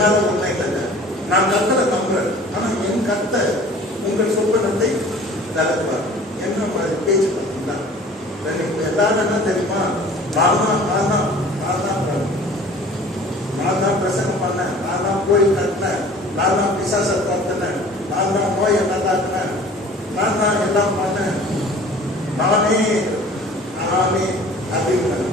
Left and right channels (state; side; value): normal; both; correlation 0.47